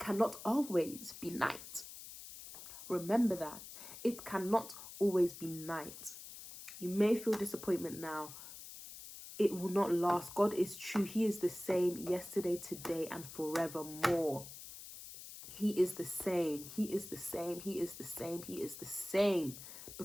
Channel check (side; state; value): left; noise; hiss, 13 dB below the sound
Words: always be night. Remember that. It cannot always be night. You may feel disappointment now. It will not last. God is true. He is the same yesterday, today, and forevermore. He is the same. He is the same. He is the same. He is the same.